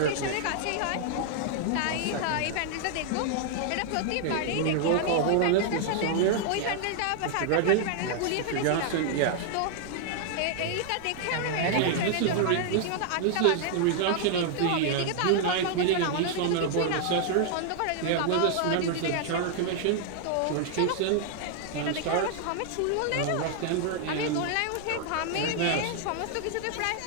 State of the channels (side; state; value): both; different; correlation 0.00